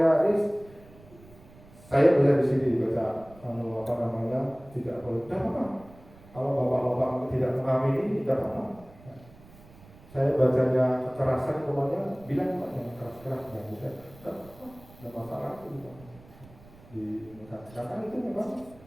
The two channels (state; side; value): noise; right; rumble, 23 dB below the sound